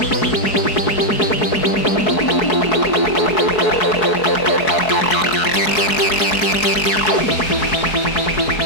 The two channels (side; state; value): right; late; 4.7 ms